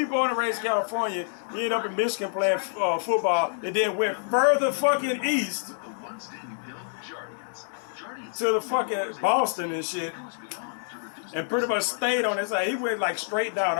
and raised in California. He ended up in Michigan playing football, and then went further fucking east to the fucking Boston and shit, and pretty much stayed on his side. He went like straight down,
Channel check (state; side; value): silent; right; digital silence